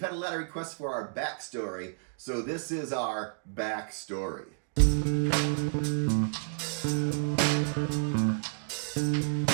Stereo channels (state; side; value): silent; left; digital silence